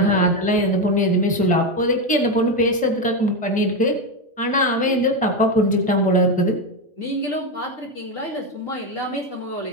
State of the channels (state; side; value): normal; both; correlation 0.11